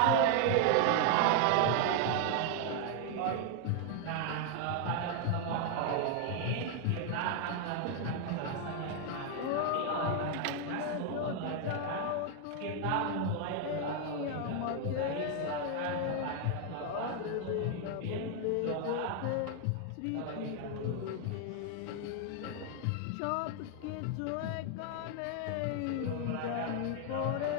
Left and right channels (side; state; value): both; different; correlation 0.00